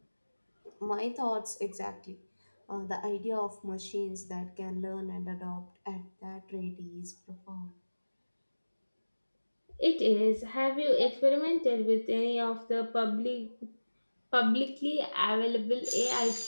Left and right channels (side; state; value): both; inverted; correlation -1.00